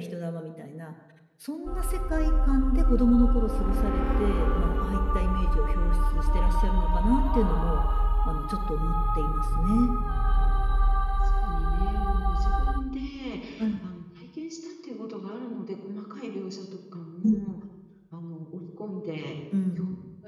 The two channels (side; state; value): both; identical; correlation 1.00